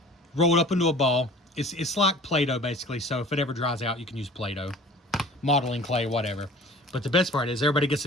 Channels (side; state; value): both; normal; correlation 0.45